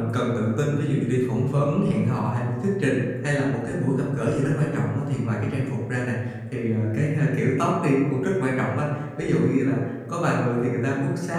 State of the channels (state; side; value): identical; both; correlation 1.00